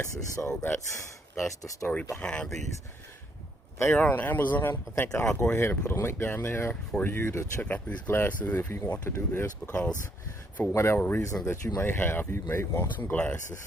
So that's the story behind these. They are on Amazon. I think I'll go ahead and put a link down there for you to check out these glasses if you want to do this, because for whatever reason that you may have, you may want some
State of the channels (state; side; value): normal; both; correlation 0.71